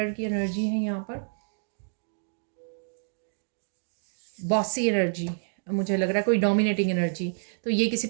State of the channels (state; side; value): silent; left; digital silence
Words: की एनर्जी है यहाँ पर, बॉसी एनर्जी। मुझे लग रहा है कोई डोमिनेटिंग एनर्जी। तो ये किसी